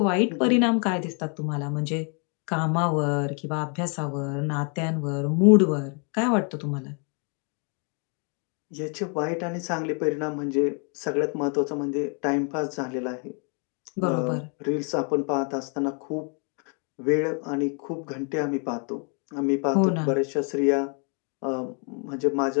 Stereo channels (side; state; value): right; quieter; 38.7 dB